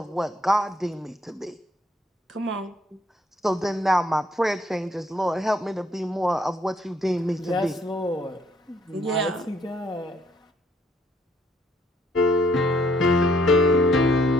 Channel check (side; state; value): both; normal; correlation 0.67